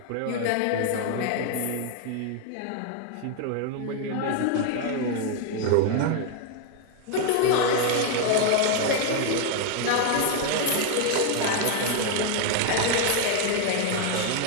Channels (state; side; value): different; both; correlation 0.00